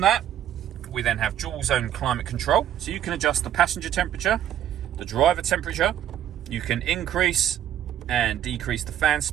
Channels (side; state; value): left; quieter; 11.1 dB